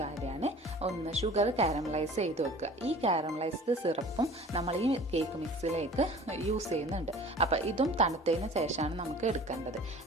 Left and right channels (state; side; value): normal; both; correlation 0.44